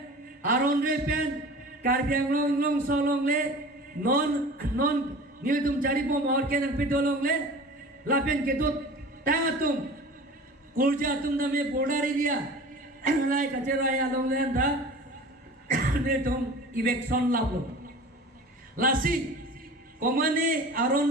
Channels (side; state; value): both; normal; correlation 0.39